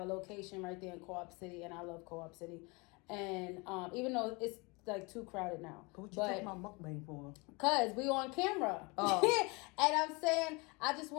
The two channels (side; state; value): right; quieter; 27.7 dB